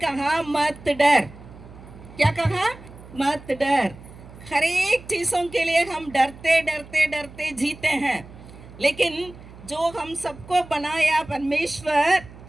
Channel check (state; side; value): noise; right; hum, 19 dB below the sound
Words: मत डर। क्या कहा? मत डर। हर एक चीज़ों के लिए हम डरते डरते डरते जीते हैं, लेकिन जो हम सबको बनाया परमेश्वर,